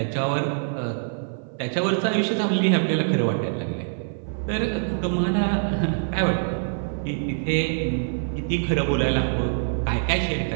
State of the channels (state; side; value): silent; left; 55 dB below the other